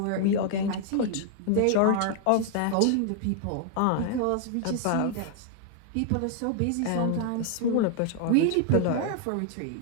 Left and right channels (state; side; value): different; both; correlation 0.00